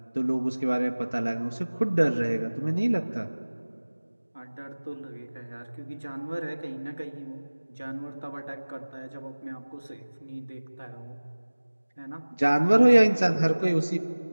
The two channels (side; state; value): both; inverted; correlation -1.00